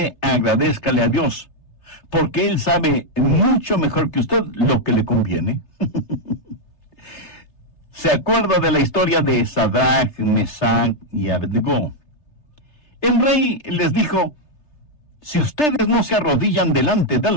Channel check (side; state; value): right; late; 3.3 ms